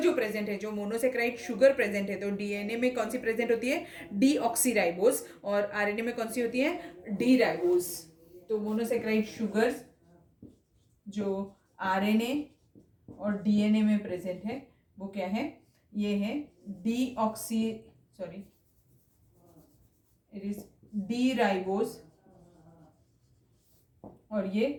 प्रेजेंट है, जो मोनोसेक्राइड शुगर प्रेजेंट है, तो डीएनए में कौन सी प्रेजेंट होती है? डीऑक्सीराइबोस. और आरएनए में कौन सी होती है? D ribose. तो मोनोसेक्राइड शुगर जो आरएनए और डीएनए में प्रेजेंट है वो क्या है? ये है इट इज डी राइबोस और ये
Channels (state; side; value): identical; both; correlation 1.00